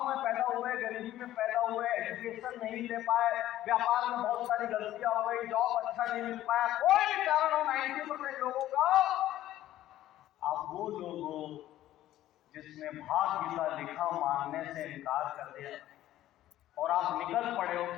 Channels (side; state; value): right; quieter; 13.7 dB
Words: में पैदा हुए, गरीबी में पैदा हुए, एजुकेशन नहीं ले पाए, व्यापार में बहुत सारी गलतियां हो गई, जॉब अच्छा नहीं मिल पाया, कोई भी कारण हो 90% लोगों का, आप वो लोग हो जिसने भाग्य का लिखा मानने से इनकार कर दिया और आप निकल पड़े हो